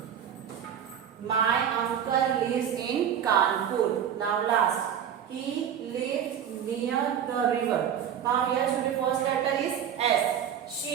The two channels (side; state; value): left; quieter; 9.0 dB